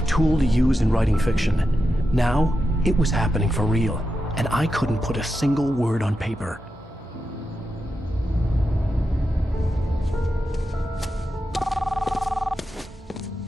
tool to use in writing fiction. Now, it was happening for real, and I couldn't put a single word on paper.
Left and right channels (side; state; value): both; normal; correlation 0.88